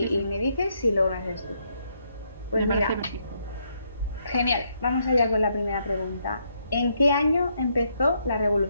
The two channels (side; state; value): both; inverted; correlation -0.75